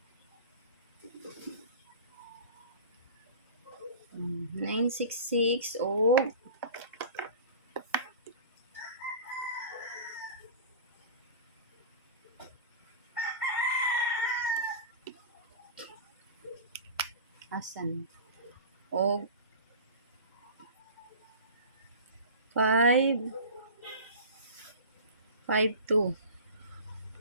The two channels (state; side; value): inverted; both; correlation -0.36